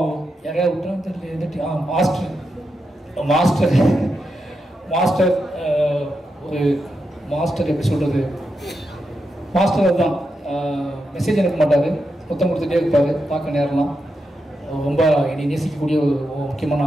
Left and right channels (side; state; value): both; normal; correlation 0.86